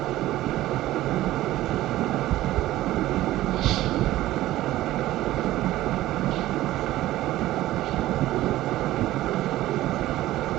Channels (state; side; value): quieter; left; 15.5 dB